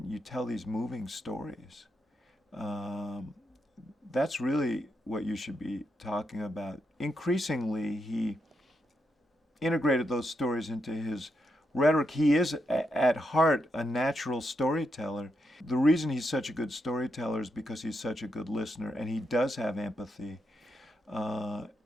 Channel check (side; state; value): both; normal; correlation 0.82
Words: you tell these moving stories. That's really what you should be talking about." Increasingly, he integrated those stories into his rhetoric. He is, at heart, a natural storyteller. The reason he's such a good storyteller is because he's such a good listener, and he does have empathy.